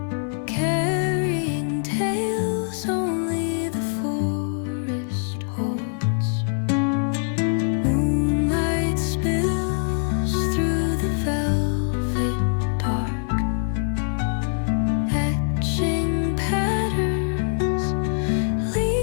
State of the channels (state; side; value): silent; right; digital silence